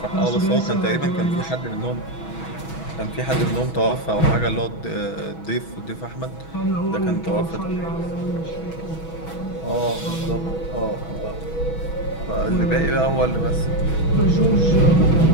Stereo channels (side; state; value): right; late; 6.2 ms